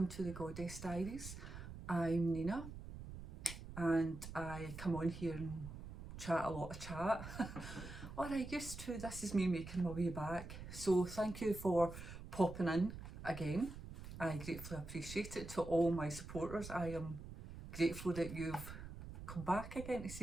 to the Goddess Diaries. I'm Nina and I come on here and chat a lot of chat. Or I used to. This is me making my way back. So thank you for popping in again. I gratefully appreciate it. To all my supporters, I am grateful that you've come back again to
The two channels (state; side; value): noise; right; rumble, 11 dB below the sound